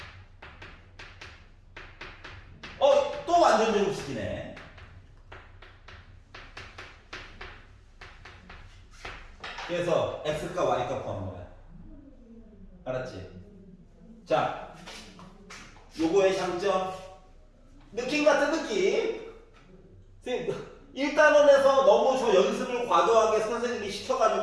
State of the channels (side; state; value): both; identical; correlation 1.00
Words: 또 완전 제곱식이네. 그래서 x값 y값 구하는 거야. 알았지? 자, 요거의 장점. 느낌 같은 느낌. 1단원에서 너무 저 연습을 과도하게 선생님이